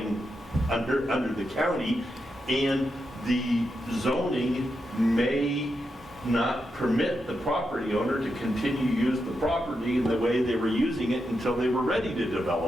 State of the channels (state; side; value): normal; both; correlation 0.86